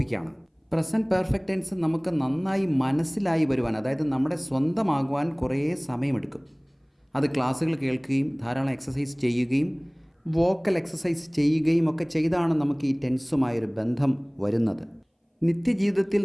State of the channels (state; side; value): identical; both; correlation 1.00